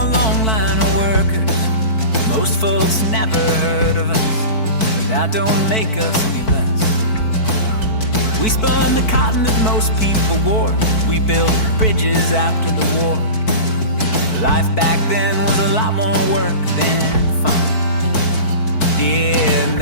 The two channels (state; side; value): late; right; 4.5 ms